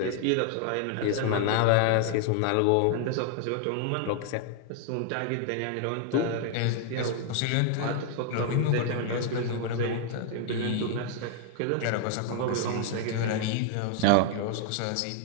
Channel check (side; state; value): both; different; correlation 0.00